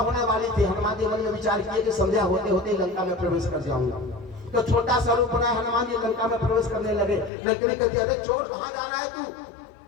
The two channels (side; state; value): right; drops out; at 7.3 s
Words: वाली थी। हनुमान जी मन में विचार किए कि संध्या होते होते लंका में प्रवेश कर जाऊंगा। तो छोटा सा रूप बनाया हनुमान जी लंका में प्रवेश करने लगे। लंकिनी कहती अरे चोर कहां जा रहा है तू,